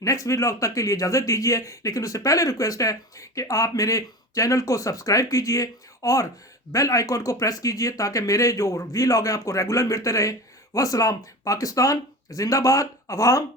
نیکسٹ ویلاگ تک کے لیے اجازت دیجیے، لیکن اس سے پہلے ریکویسٹ ہے کہ آپ میرے چینل کو سبسکرائب کیجیے اور بیل آئیکن کو پریس کیجیے تاکہ میرے جو ویلاگ ہیں آپ کو ریگولر ملتے رہے۔ والسلام، پاکستان زندہ باد، عوام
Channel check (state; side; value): normal; both; correlation 0.30